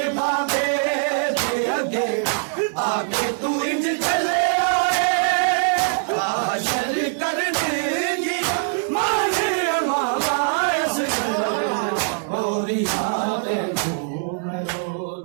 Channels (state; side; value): silent; left; digital silence